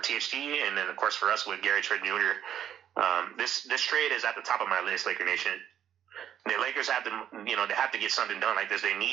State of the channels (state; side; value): quieter; left; 9.9 dB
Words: and then, of course, for us with Gary Trent Jr. This trade is at the top of my list, Laker Nation. The Lakers have to, they have to get something done like this. They